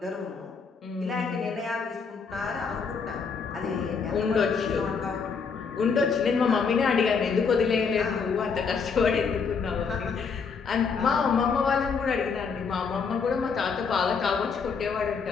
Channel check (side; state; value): right; quieter; 5.5 dB